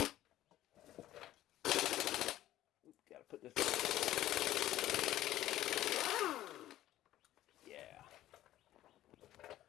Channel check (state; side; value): quieter; right; 13.9 dB